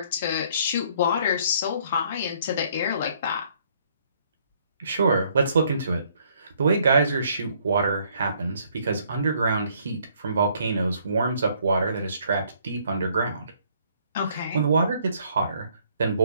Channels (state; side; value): inverted; both; correlation -0.65